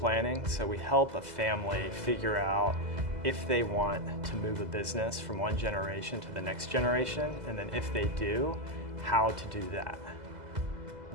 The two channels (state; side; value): late; left; 2.0 ms